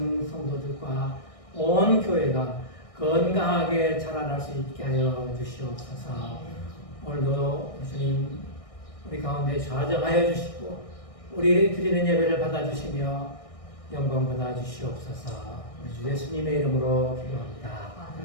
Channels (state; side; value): late; right; 1.6 ms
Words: 성도들과 온 교회가 건강하게 자라날 수 있게 하여 주시옵소서. 오늘도 주님 우리 가운데 좌정하여 주시고 우리 드리는 예배를 받아주시며 영광 받아주시옵소서. 우리 주 예수님의 이름으로 기도합니다.